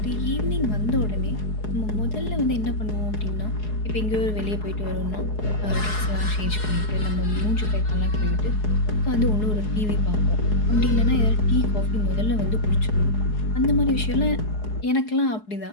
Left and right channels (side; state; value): right; late; 4.8 ms